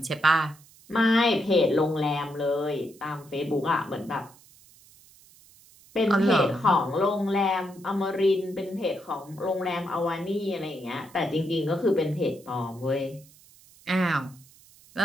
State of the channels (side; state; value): right; noise; hiss, 25 dB below the sound